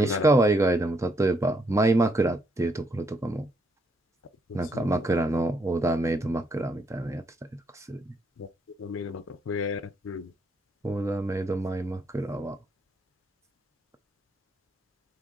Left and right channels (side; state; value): both; normal; correlation 0.73